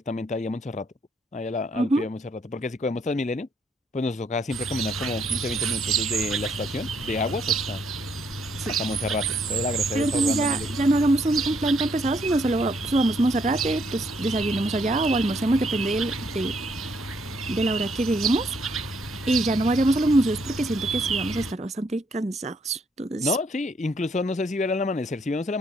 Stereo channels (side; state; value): both; normal; correlation 0.70